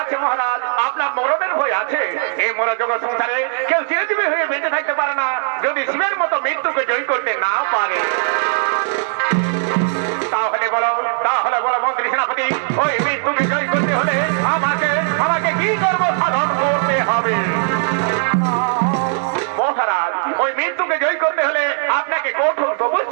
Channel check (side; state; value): left; silent; 67 dB below the other